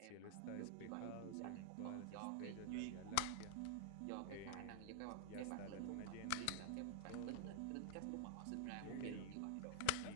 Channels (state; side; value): different; both; correlation -0.01